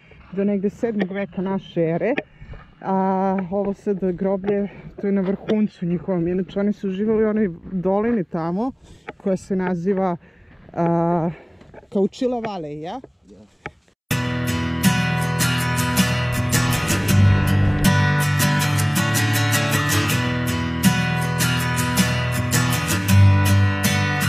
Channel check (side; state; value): both; identical; correlation 1.00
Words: do negde 7. veka naše ere. A ovo sad groblje, to je na vrhuncu njihovom. Inače oni su živjeli u onoj dolini tamo koja se naziva Chauchilla Valley, ja? Yeah.